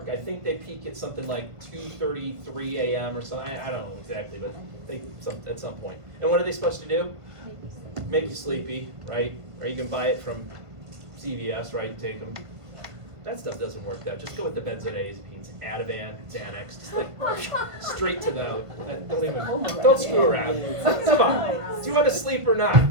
I think they peak at something like 2:33 a.m. or something. I don't know exactly, but at some point. And what are they supposed to do? Make you sleepy, right? Or you can buy it from CVS, right? Take them. That stuff doesn't work though. Just go with the benzodiazepines, Ativan, Xanax, just like straight to the. Don't screw around. Come on. Do you want to sleep or not?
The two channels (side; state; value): left; late; 1.5 ms